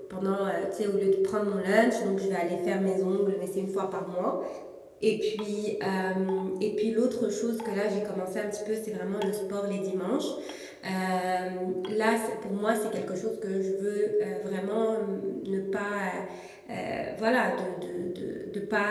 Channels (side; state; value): both; identical; correlation 1.00